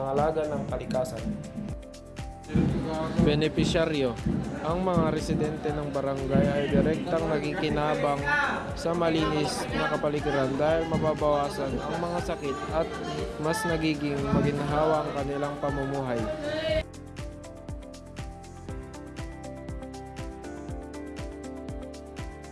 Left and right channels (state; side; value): identical; both; correlation 1.00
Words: ng kalikasan. Benepisyaryo. Ang mga residente ng barangay ay direktang nakikinabang sa malinis na kapaligiran dahil mababawasan ang mga sakit at mas nagiging maginhawa ang kanilang pamumuhay.